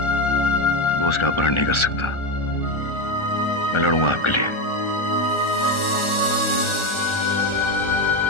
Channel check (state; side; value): late; right; 1.4 ms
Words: वो उसका अपहरण नहीं कर सकता। मैं लड़ूंगा आपके लिए।